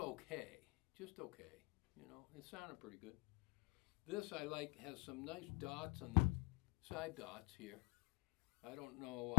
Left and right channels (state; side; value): quieter; right; 24.8 dB